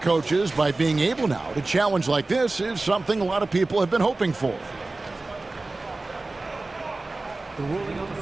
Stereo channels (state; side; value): quieter; left; 3.2 dB